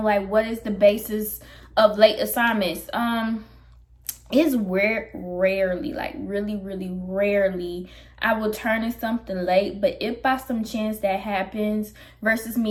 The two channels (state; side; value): identical; both; correlation 1.00